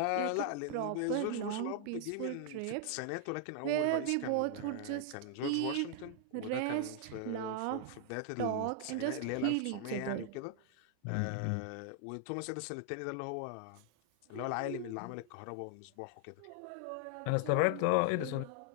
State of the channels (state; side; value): different; both; correlation 0.00